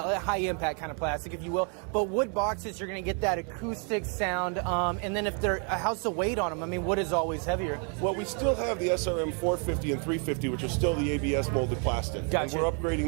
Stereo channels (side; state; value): left; quieter; 38.8 dB